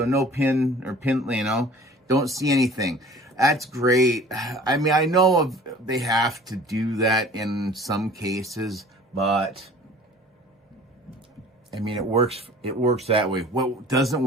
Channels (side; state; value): both; normal; correlation 0.47